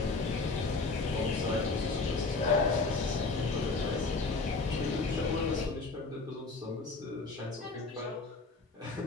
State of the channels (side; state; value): right; quieter; 3.7 dB